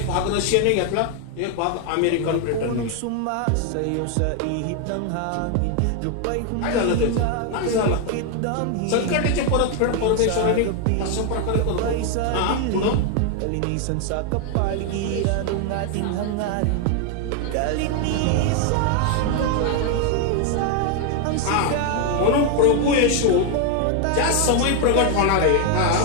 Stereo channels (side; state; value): both; different; correlation 0.01